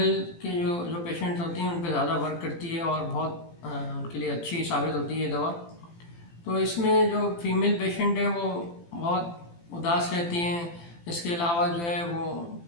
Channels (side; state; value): right; late; 18 ms